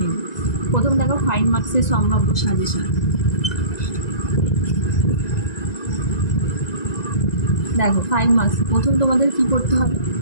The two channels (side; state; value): right; late; 1.9 ms